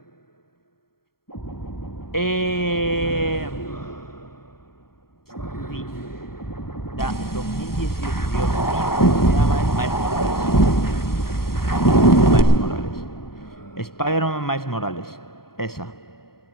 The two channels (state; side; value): late; right; 0.93 ms